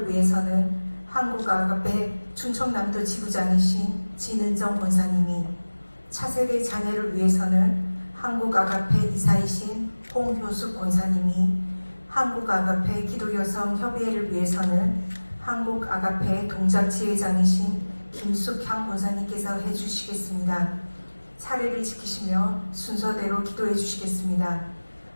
위해서는 한국 아가페 충청남도 지부장이신 진은정 권사님이, 차세대 자녀를 위해서는 한국 아가페 이사이신 홍효숙 권사님이, 한국 아가페 기도여성 협의회를 위해서는 한국 아가페 동작 지회장이신 김숙향 권사님께서 해주시겠습니다. 차례를 지키시며 순서대로 기도해 주시겠습니다.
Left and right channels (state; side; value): inverted; both; correlation -1.00